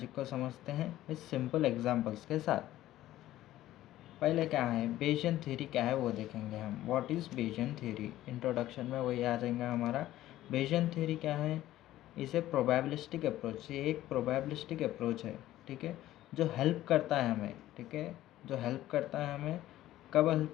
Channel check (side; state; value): right; quieter; 14.5 dB